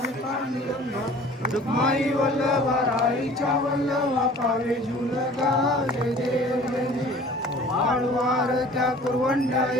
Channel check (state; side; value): normal; both; correlation 0.47